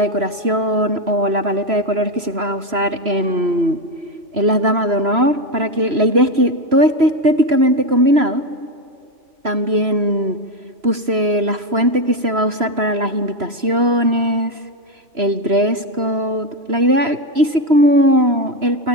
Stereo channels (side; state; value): left; late; 3.0 ms